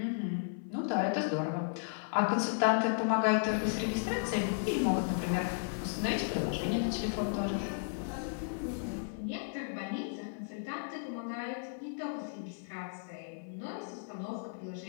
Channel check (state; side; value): silent; right; 55 dB below the other